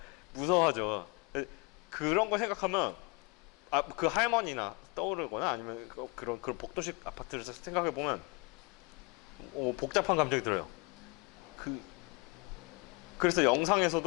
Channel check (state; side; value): quieter; right; 28.2 dB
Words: 무서워하죠. 그런 거 생각하면 그 할머니나 떠오르거나 아니면 그런 복도식 아파트를 생각해 보면 복잡한 감정이 들어요. 그래서